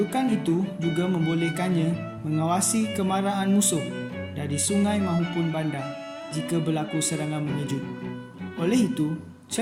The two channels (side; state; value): both; identical; correlation 1.00